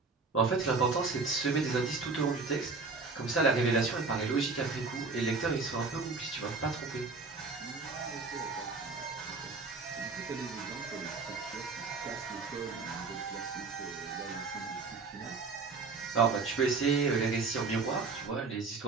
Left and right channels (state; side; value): quieter; left; 4.2 dB